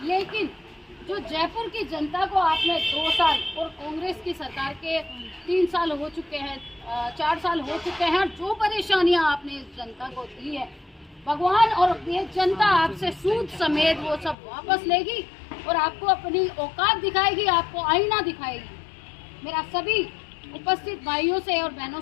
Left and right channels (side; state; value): right; drops out; at 14.4 s